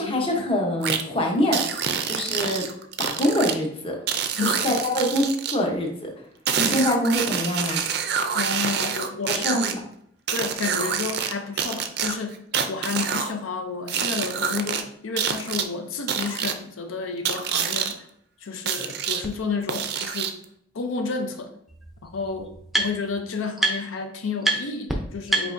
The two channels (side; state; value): both; normal; correlation 0.27